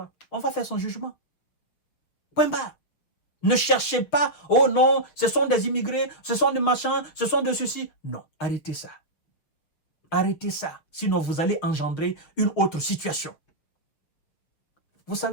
On va faire son jugement. Point barre. Ne cherchez pas, oh non, ce sont des immigrés, ce sont des machins, ce sont de ceci. Non, arrêtez ça. Arrêtez ça, sinon vous allez engendrer une autre situation. Vous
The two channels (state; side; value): late; right; 6.8 ms